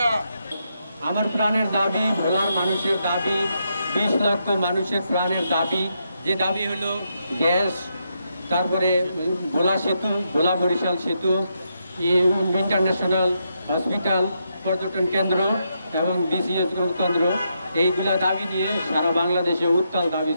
না। আমার প্রাণের দাবি, ভোলার মানুষের দাবি, 20 লক্ষ মানুষের প্রাণের দাবি। যে দাবি হলো গ্যাস, তারপরে ভোলা সেতু, ভোলা বরিশাল সেতু, ইন্টারন্যাশনাল হসপিটাল, পর্যটন কেন্দ্র এবং BCS কেন্দ্র, এইগুলা দাবি নিয়ে সারা বাংলাদেশে উত্তাল দাবি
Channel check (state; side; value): inverted; both; correlation -0.81